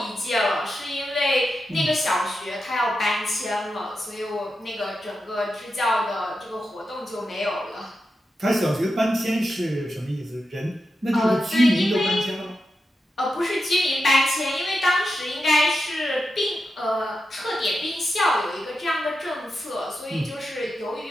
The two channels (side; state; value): both; normal; correlation 0.89